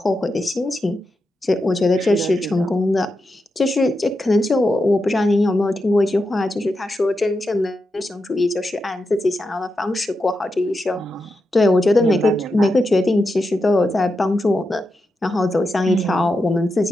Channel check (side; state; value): both; normal; correlation 0.88